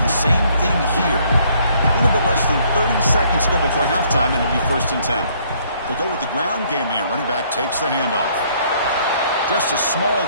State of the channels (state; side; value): inverted; both; correlation -0.64